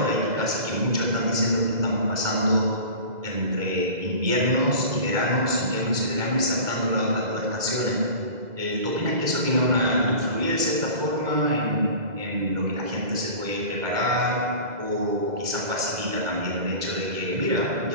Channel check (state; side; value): late; left; 2.0 ms